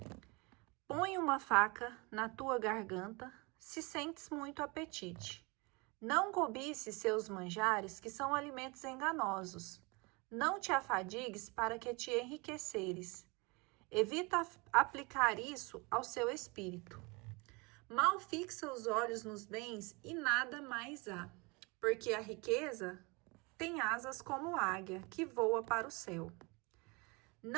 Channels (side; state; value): left; quieter; 27.7 dB